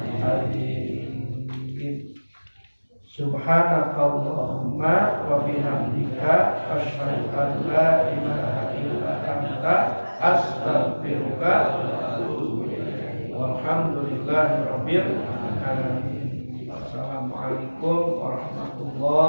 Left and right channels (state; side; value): inverted; both; correlation -1.00